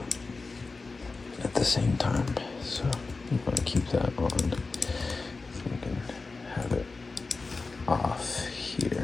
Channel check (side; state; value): right; quieter; 3.9 dB